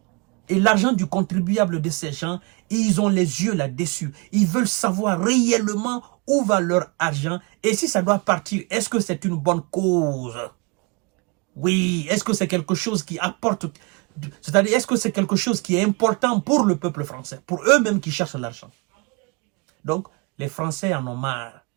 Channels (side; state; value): left; quieter; 29.6 dB